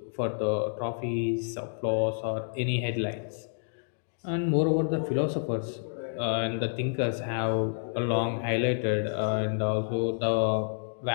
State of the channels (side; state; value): right; silent; digital silence